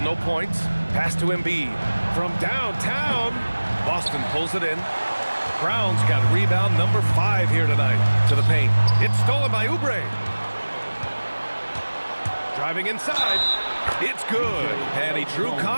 no points. Pass to Embiid. From downtown, Boston pulls it in. Brown's got rebound number 5 here tonight. To the paint. It's stolen by Oubre. Driving inside. It's good. And he drew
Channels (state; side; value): inverted; both; correlation -1.00